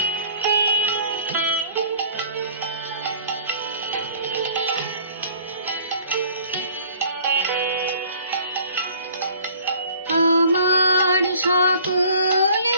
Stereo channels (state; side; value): inverted; both; correlation -0.53